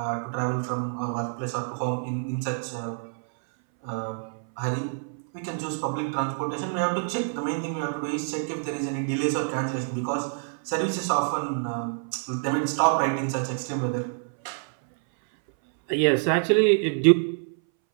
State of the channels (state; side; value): silent; left; 60 dB below the other